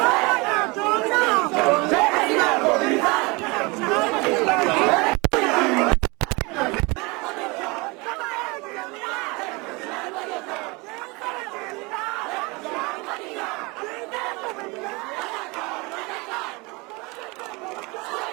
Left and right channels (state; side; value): quieter; left; 26.4 dB